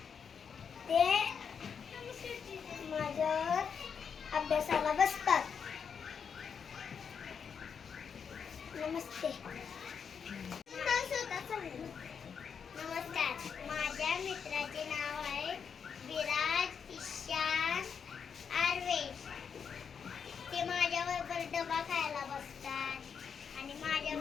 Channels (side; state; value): right; quieter; 6.7 dB